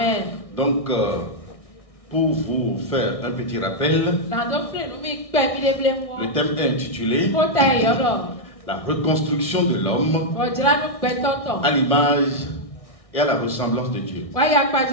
Donc, pour vous faire un petit rappel, le thème est intitulé La reconstruction de l'homme à l'image et à la ressemblance de Dieu.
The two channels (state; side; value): late; right; 1.6 ms